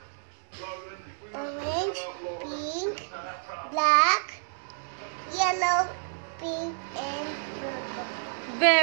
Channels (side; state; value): left; silent; digital silence